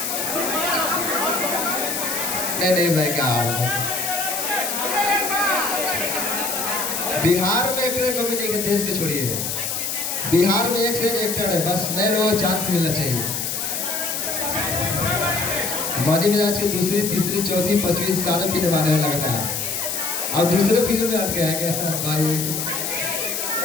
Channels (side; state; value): left; noise; hiss, 2 dB below the sound